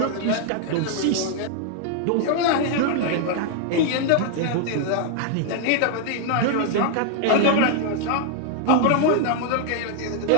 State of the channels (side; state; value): both; different; correlation 0.00